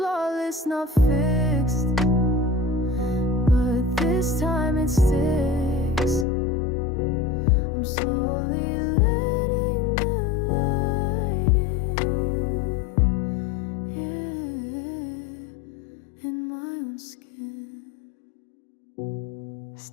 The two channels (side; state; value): right; drops out; at 6.2 s